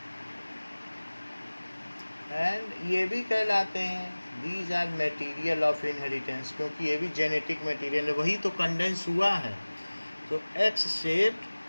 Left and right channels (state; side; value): inverted; both; correlation -1.00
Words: And ये भी कहलाते हैं these are material of inheritance, क्योंकि ये भी जेनेटिक मटेरियल है, वही तो कंडेंस हुआ है. तो X